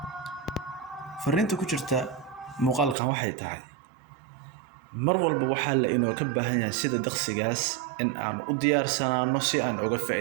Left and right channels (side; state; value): left; drops out; at 3.0 s